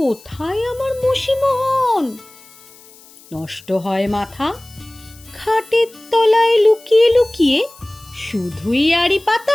আমার মশিমোহন? নষ্ট হয় মাথা, খাটের তলায় লুকিয়ে লুকিয়ে শুধুই আড়ি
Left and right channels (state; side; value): noise; left; hiss, 24 dB below the sound